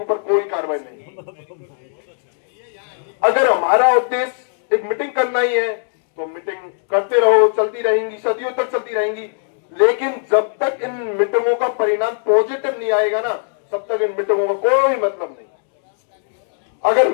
ऊपर कोई कार्रवाई नहीं। अगर हमारा उद्देश्य एक मीटिंग करना ही है तो मीटिंग करते रहो, चलती रहेंगी, सदियों तक चलती रहेंगी। लेकिन जब तक इन मीटिंगों का परिणाम पॉजिटिव नहीं आएगा ना, तब तक इन मीटिंगों का कोई मतलब नहीं। अगर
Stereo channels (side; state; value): right; silent; 67 dB below the other